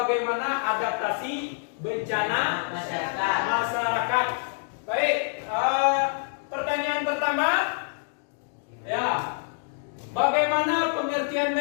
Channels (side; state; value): right; silent; digital silence